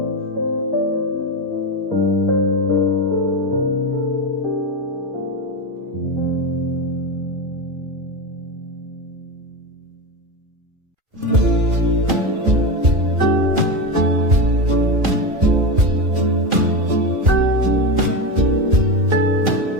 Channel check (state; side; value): late; left; 2.4 ms